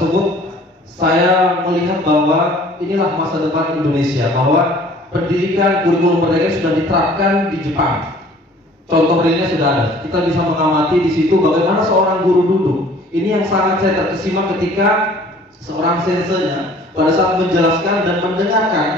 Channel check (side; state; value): both; normal; correlation 0.52